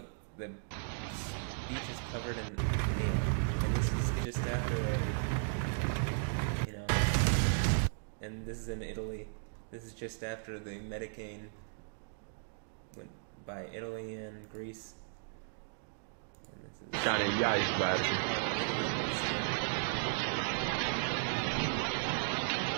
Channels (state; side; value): silent; left; digital silence